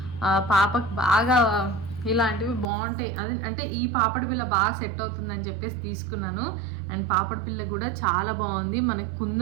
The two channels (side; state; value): left; drops out; at 2.7 s